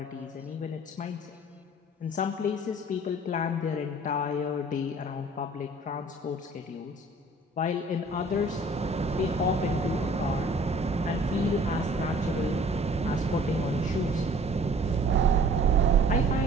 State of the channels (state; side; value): normal; both; correlation 0.52